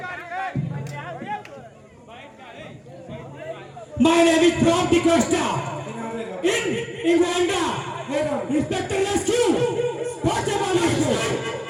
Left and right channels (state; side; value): identical; both; correlation 1.00